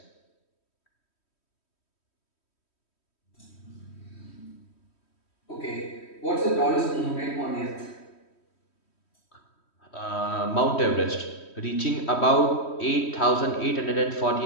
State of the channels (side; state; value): right; late; 3.1 ms